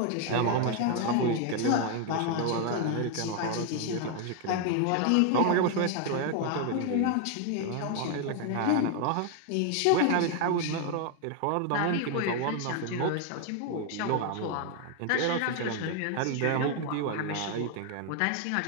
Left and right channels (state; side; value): different; both; correlation 0.01